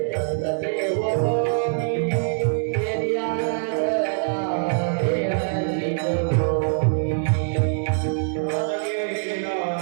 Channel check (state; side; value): silent; left; 59 dB below the other